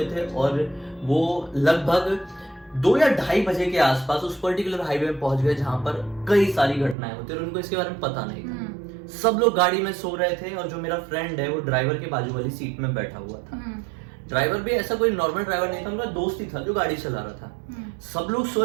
थे और वो लगभग 2 या 2:30 बजे के आसपास उस पर्टिकुलर हाईवे में पहुंच गए जहां पर कई सारी घटनाएं होती है और उनको इसके बारे में पता नहीं था। सब लोग गाड़ी में सो रहे थे और जो मेरा फ्रेंड है वो ड्राइवर के बाजू वाली सीट में बैठा हुआ था। ड्राइवर भी ऐसा कोई नॉर्मल ड्राइवर नहीं था, उनका दोस्त ही था जो गाड़ी चला रहा था। सब लोग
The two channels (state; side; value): drops out; left; at 7.0 s